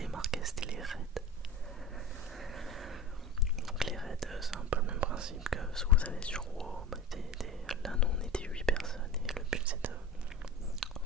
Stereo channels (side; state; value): both; normal; correlation 0.32